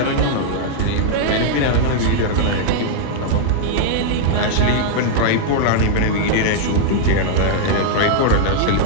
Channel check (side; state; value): both; different; correlation -0.01